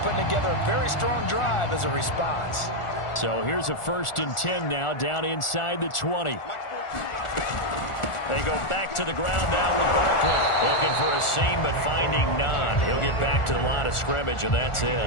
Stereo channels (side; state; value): right; late; 1.4 ms